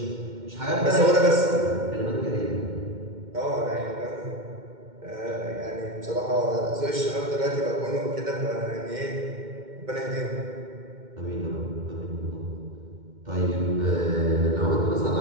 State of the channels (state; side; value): late; left; 2.1 ms